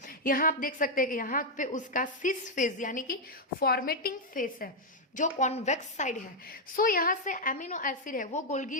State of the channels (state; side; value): normal; both; correlation -0.01